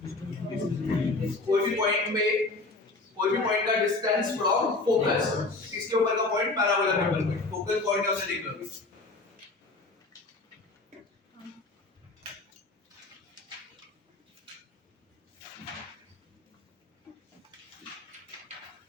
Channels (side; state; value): right; quieter; 3.3 dB